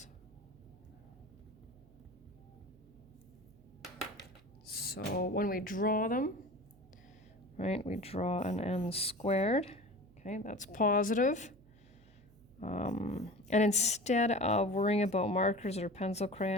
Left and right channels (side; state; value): right; noise; hum, 26 dB below the sound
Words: So when we draw them, right, we draw an n squared. Okay, that's positive. And instead of worrying about markers or pencil